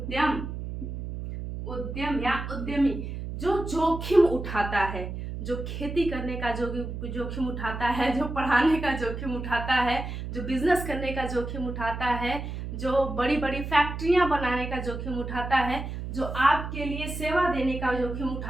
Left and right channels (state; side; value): noise; right; hum, 6 dB below the sound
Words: उद्यम या उद्यमी, जो जोखिम उठाता है, जो खेती करने का जोखिम उठाता है, जो पढ़ाने का जोखिम उठाता है, जो बिजनेस करने का जोखिम उठाता है, जो बड़ी बड़ी फैक्ट्रियां बनाने का जोखिम उठाता है, जो आपके लिए सेवा देने का जोखिम